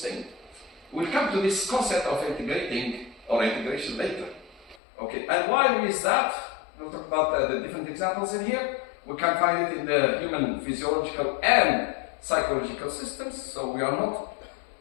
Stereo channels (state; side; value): drops out; right; at 4.8 s